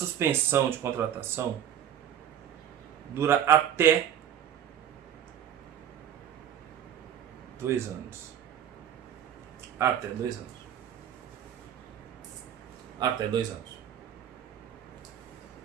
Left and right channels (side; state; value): left; quieter; 9.7 dB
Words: de contratação dura até 2 anos. Até 2 anos. Até 2 anos.